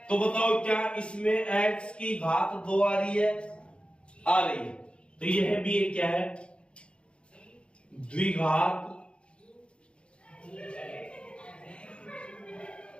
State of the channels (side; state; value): right; late; 0.057 ms